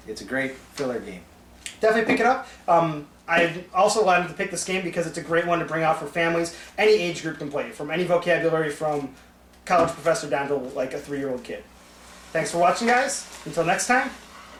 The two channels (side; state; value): both; identical; correlation 1.00